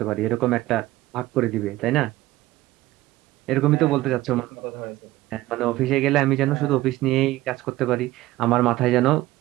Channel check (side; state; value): left; quieter; 17.0 dB